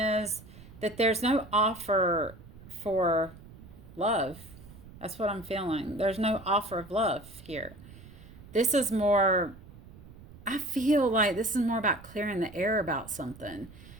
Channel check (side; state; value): right; noise; rumble, 19 dB below the sound